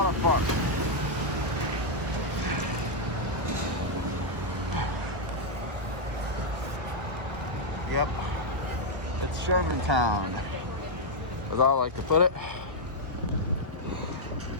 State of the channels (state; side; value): late; left; 1.2 ms